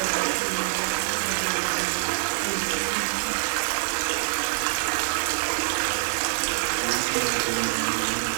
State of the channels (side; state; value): left; silent; digital silence